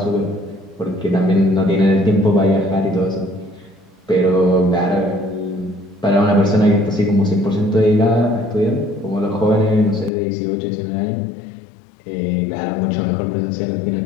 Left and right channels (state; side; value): drops out; right; at 10.1 s